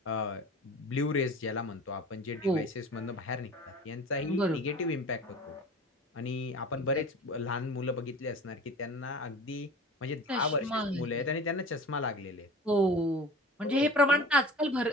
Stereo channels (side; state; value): both; normal; correlation 0.39